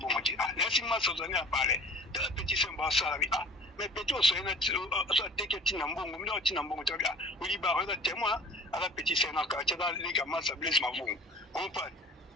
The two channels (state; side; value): normal; both; correlation 0.44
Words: ti lesi maso zani apale ta petit semba sala bi mais petit aussi na teke tina mbongo mila tina mbongo tabia uli ba reza témoin ala petit sena ka tia les gamins ça blesse ma vous on parle